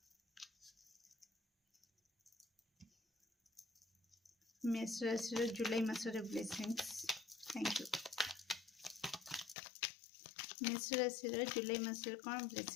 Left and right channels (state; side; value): drops out; right; at 9.6 s